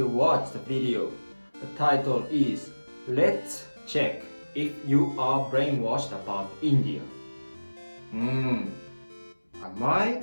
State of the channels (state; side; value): inverted; both; correlation -1.00